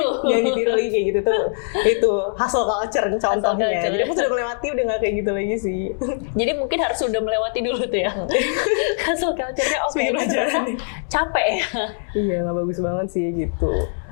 lagi kayak gitu tuh. Itu hustle culture contohnya. Jadi aku sudah melewati, udah nggak kayak gitu lagi sih. Jadi mungkin harus sudah melewati dulu tuh ya. Hustle culture-nya capek ya. Iya, nggak bagus banget sih gitu.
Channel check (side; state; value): right; silent; 65 dB below the other